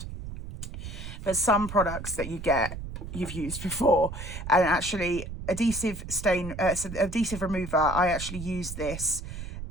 But some products that you get, you've used before. And actually, adhesive remover, I actually use this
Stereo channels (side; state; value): right; noise; rumble, 9 dB below the sound